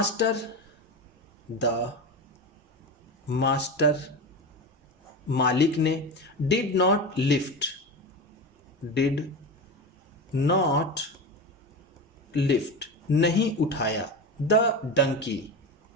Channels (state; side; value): normal; both; correlation 0.23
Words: मास्टर मालिक ने। डिड नॉट लिफ्ट नहीं उठाया। द